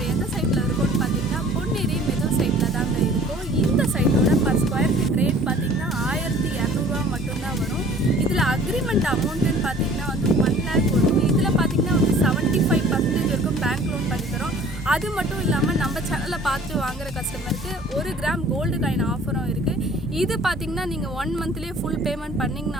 எந்த சைட்டில் இருக்கோம்னு பார்த்தீங்கன்னா பொன்னேரி மெதூர் சைட்டில் தாங்க இருக்கோம். இந்த சைட்டோட பர் ஸ்கொயர் ஃபீட் ரேட் பார்த்தீங்கன்னா 1200 மட்டும்தான் வரும். இதில் அக்ரிமெண்ட் அமௌண்ட்டுன்னு பார்த்தீங்கன்னா வந்து 1 lakh வரும். இதில் பார்த்தீங்கன்னா வந்து 75% வரைக்கும் பேங்க் லோன் பண்ணி தரோம். அது மட்டும் இல்லாமல் நம்ம சேனலை பார்த்து வாங்குகிற கஸ்டமருக்கு 1 கிராம் கோல்டு காயின் ஆஃபரும் இருக்குது. இது பார்த்தீங்கன்னா நீங்கள் 1 மந்த்லேயே ஃபுல் பேமெண்ட்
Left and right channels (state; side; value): normal; both; correlation 0.50